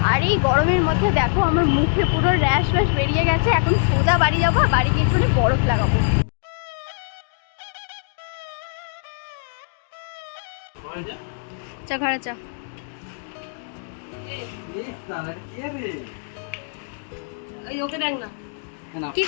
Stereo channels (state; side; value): silent; right; digital silence